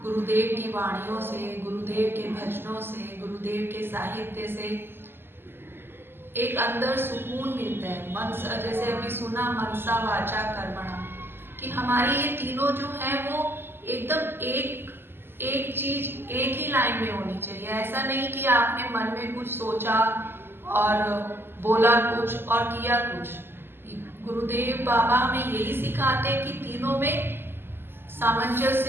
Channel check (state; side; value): late; left; 0.11 ms